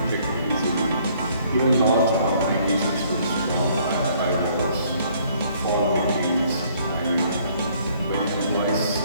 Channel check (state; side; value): inverted; both; correlation -0.62